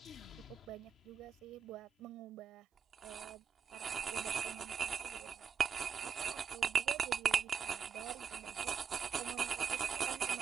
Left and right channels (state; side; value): quieter; left; 6.6 dB